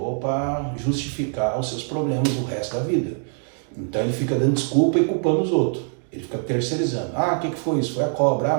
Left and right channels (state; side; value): silent; left; 63 dB below the other